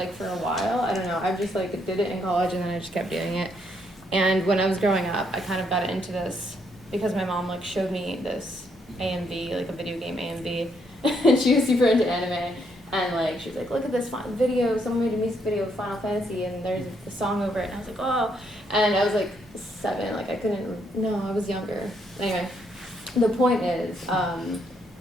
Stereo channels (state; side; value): normal; both; correlation 0.73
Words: for a while. I don't know. I've just like did it in college and then I just kept doing it. And when I was growing up, I kind of got into this because my mom like showed me this AMV, like a video game AMV, and she was super into anime. And like she was like, look at this fun video, someone made a music video of Final Fantasy and there's a song over it, and I was like, oh, and I was like 7, like I was younger. Anyway, the point is,